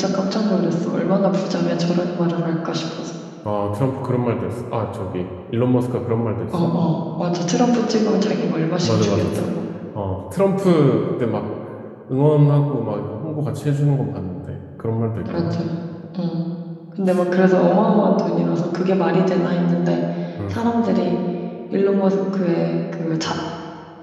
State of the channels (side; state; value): both; identical; correlation 1.00